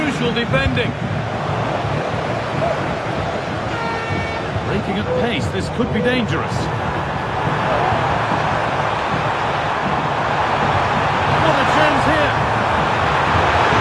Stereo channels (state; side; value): identical; both; correlation 1.00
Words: defending. Breaking at pace, this could be dangerous. What a chance here!